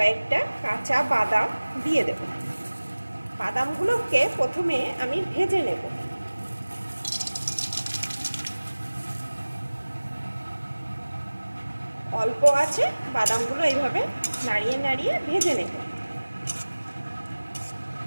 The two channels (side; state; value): both; inverted; correlation -1.00